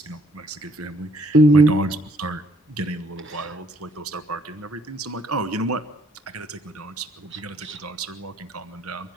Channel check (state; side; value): normal; both; correlation 0.64